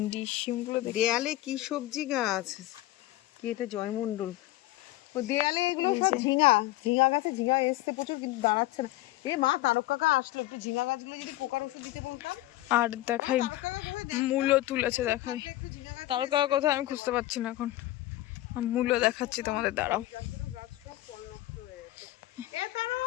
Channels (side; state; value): right; quieter; 16.6 dB